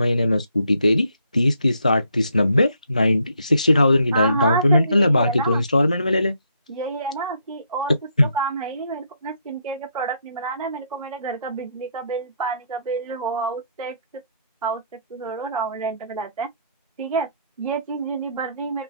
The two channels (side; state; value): both; inverted; correlation -0.72